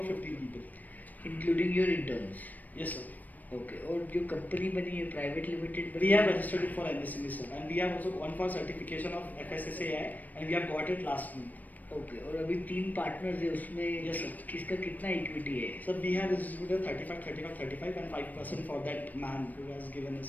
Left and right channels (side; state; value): right; late; 0.082 ms